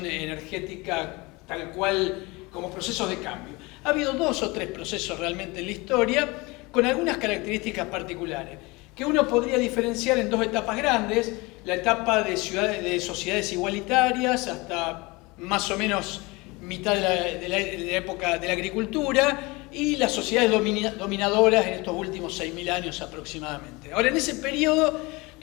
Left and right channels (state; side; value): quieter; right; 24.5 dB